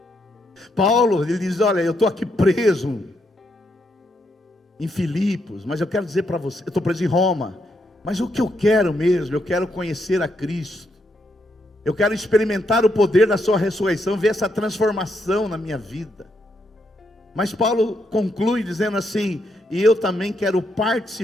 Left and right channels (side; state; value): both; normal; correlation 0.78